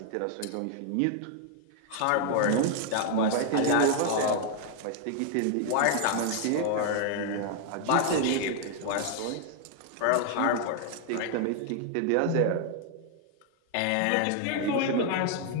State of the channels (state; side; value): different; both; correlation 0.00